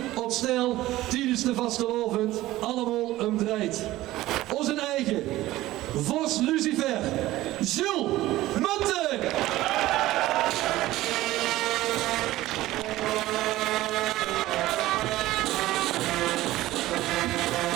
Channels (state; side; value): quieter; left; 16.4 dB